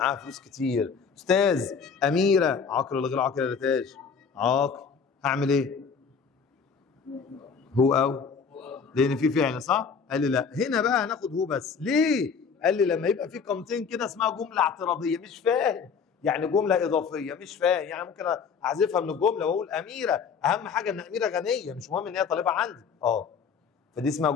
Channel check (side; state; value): right; quieter; 6.0 dB